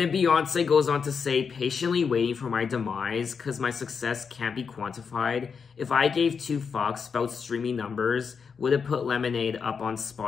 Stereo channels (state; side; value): quieter; right; 5.9 dB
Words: Beyoncé goes on to say, patiently waiting for my demise, cause my success can't be quantified. If I gave 2 fucks about streaming numbers, would it put Lemonade up on